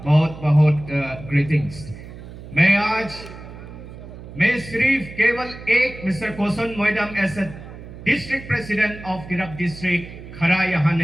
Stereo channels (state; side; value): noise; right; hum, 14 dB below the sound